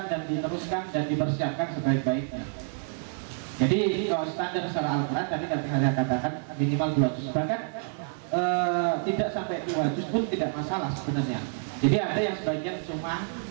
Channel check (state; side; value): silent; left; 59 dB below the other